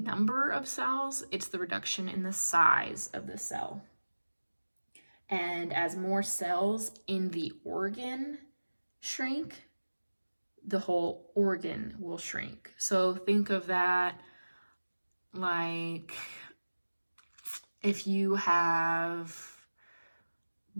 of cells, it's the reduction in the size of the cell. And as more cells in the organ shrink, the whole organ will shrink. So think of that like if you have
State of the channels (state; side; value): inverted; both; correlation -1.00